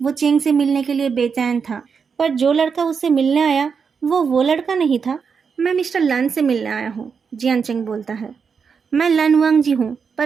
चेंग से मिलने के लिए बेचैन था, पर जो लड़का उससे मिलने आया वो लड़का नहीं था। मैं मिस्टर लान से मिलने आया हूँ, जियान चेंग बोलता है। मैं लानवांगजी हूँ,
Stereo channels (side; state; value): left; quieter; 6.0 dB